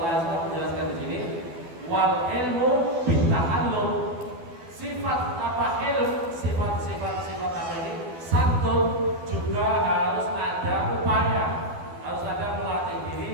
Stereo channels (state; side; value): late; left; 12 ms